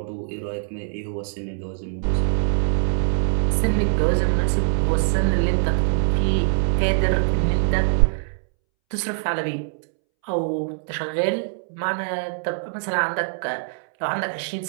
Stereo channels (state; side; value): silent; left; 63 dB below the other